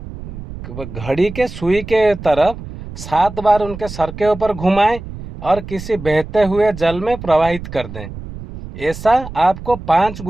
घड़ी के सुई के तरफ 7 बार उनके सर के ऊपर घुमाएं और किसी बहते हुए जल में प्रवाहित कर दें। ऐसा आपको 5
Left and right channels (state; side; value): noise; right; rumble, 12 dB below the sound